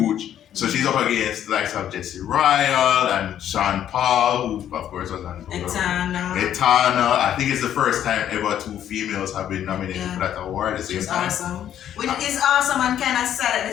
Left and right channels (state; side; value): quieter; right; 10.5 dB